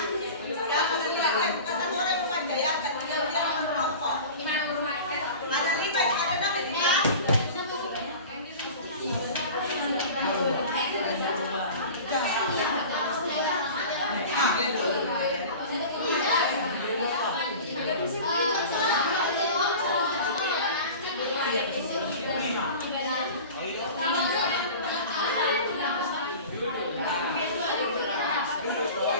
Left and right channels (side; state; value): both; inverted; correlation -0.37